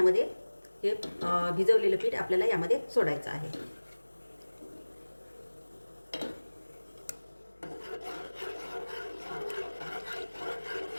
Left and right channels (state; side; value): inverted; both; correlation -1.00